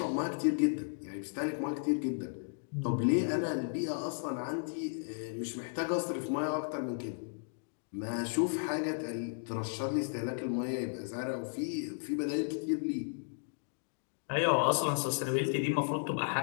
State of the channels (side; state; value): right; silent; digital silence